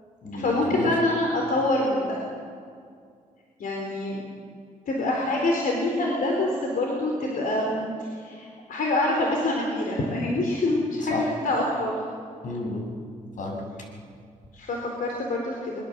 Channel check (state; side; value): normal; both; correlation 0.48